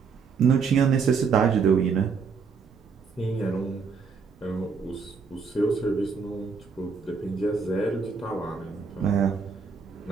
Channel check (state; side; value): quieter; left; 5.5 dB